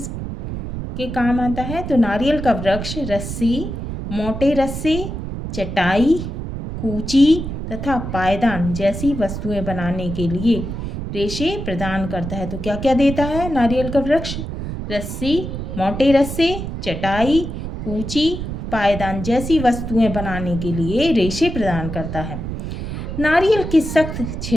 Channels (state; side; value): noise; right; rumble, 6 dB below the sound